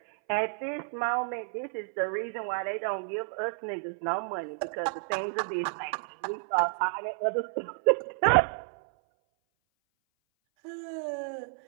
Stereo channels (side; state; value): left; silent; 57 dB below the other